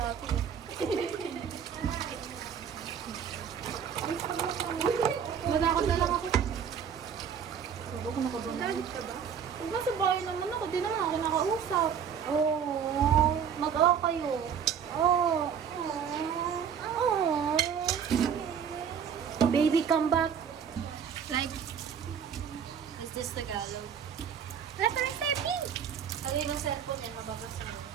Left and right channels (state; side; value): quieter; left; 7.7 dB